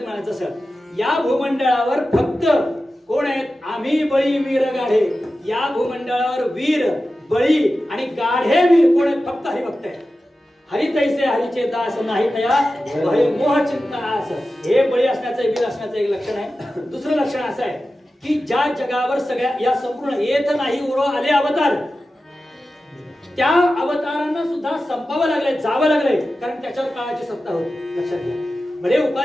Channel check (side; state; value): both; normal; correlation 0.93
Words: सर. या भूमंडळावर फक्त कोण आहेत? आम्ही बळी वीर गाढे. या भूमंडळावर वीर बळी आणि गाढे वीर कोण आहेत? फक्त हरिभक्त आहेत. हरी तैसे हरीचे दास नाही तया भय मोह चिंता आस. हे बळी असण्याचं वीर असण्याचं एक लक्षण आहे. दुसरं लक्षण असं आहे की ज्या जगावर सगळ्या या संपूर्ण येत नाही उरो आले अवतार, त्या अवतारांना सुद्धा संपावं लागलंय, जावं लागलंय, कारण त्याच्यावर काळाची सत्ता होती. लक्षात घ्या. भले